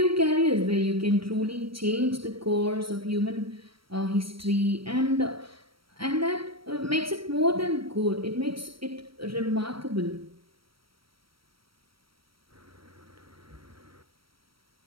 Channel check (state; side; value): late; left; 0.75 ms